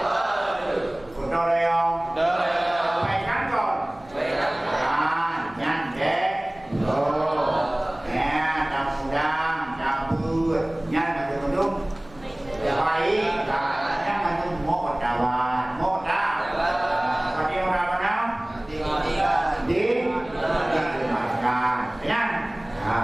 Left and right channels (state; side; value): noise; right; hum, 24 dB below the sound